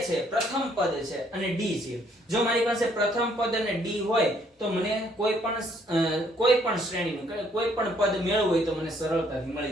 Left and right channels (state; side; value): normal; both; correlation 0.66